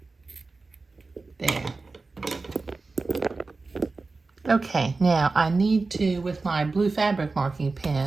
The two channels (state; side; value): quieter; left; 3.8 dB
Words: There. Okay, now I need to, with my blue fabric marking